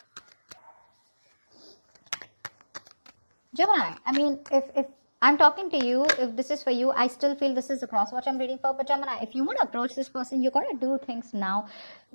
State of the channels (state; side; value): inverted; both; correlation -1.00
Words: Gemini, I mean, if I'm talking to you, if this is for you, I still feel this is the cross watch I'm reading for. But Gemini, if you want to approach this person, you got to do things now.